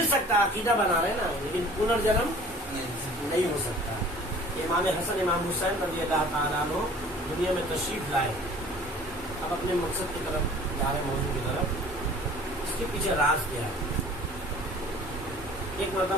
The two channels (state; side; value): normal; both; correlation 0.48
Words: سکتا ہے، عقیدہ بنا رہے نا، لیکن پنرجنم نہیں ہو سکتا. امام حسن امام حسین رضی اللہ تعالیٰ عنہ دنیا میں تشریف لائے، اب اپنے مقصد کی طرف جا رہے، موضوع کی طرف. اس کے پیچھے راز کیا ہے؟ ایک